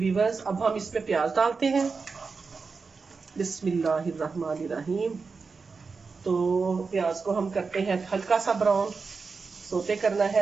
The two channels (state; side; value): quieter; left; 4.7 dB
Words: अब हम इसमें प्याज डालते हैं। बिस्मिल्लाहिर्रहमानिर्रहीम। तो प्याज को हम करते हैं हल्का सा ब्राउन, सोते करना